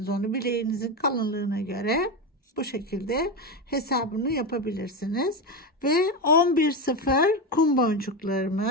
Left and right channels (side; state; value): both; normal; correlation 0.15